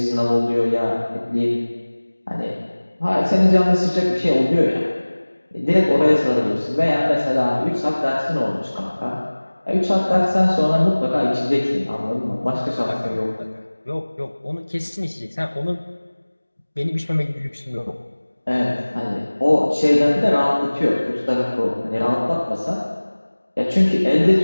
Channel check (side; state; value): both; inverted; correlation -1.00